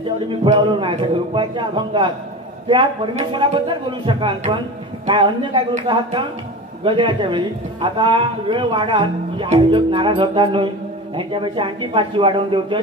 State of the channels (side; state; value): both; normal; correlation 0.30